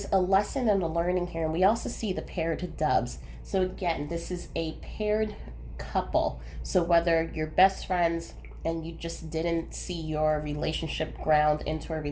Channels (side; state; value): both; identical; correlation 1.00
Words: a lesson and a learning here. And we also see the paired doves. So again, this is a paired couple. So whether you're best friends and you just didn't see your relationship ground into a